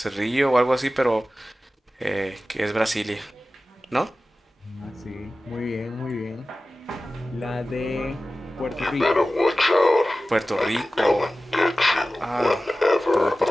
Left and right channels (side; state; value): both; normal; correlation 0.96